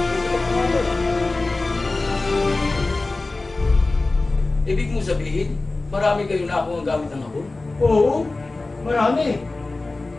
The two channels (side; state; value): right; quieter; 3.3 dB